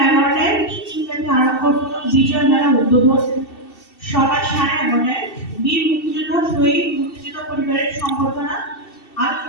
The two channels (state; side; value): late; right; 2.7 ms